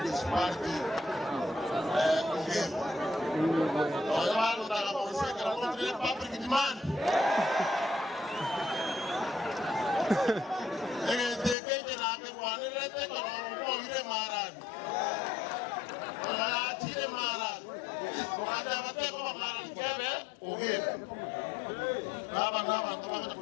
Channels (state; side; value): drops out; right; at 11.6 s